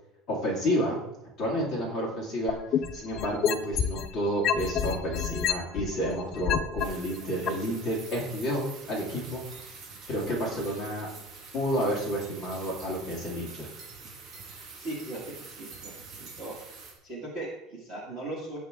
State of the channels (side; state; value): both; normal; correlation 0.40